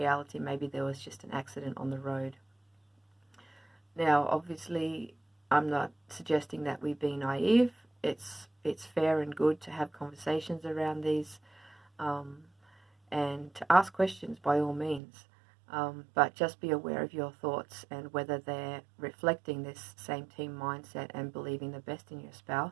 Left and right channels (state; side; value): drops out; left; at 15.0 s